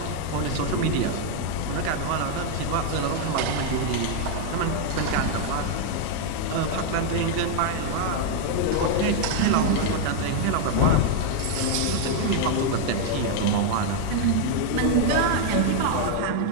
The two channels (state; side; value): different; both; correlation 0.00